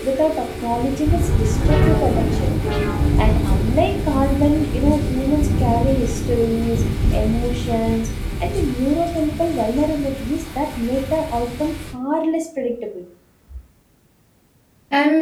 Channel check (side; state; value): both; identical; correlation 1.00